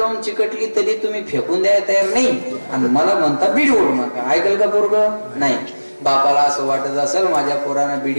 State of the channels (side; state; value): both; inverted; correlation -1.00